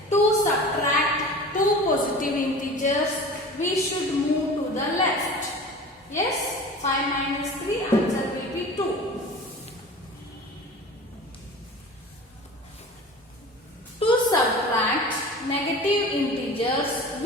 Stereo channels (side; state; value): both; normal; correlation 0.38